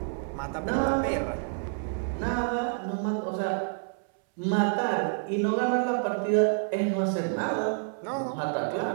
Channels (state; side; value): silent; left; 59 dB below the other